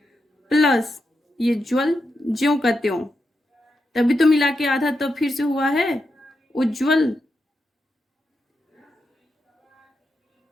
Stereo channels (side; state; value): both; normal; correlation 0.86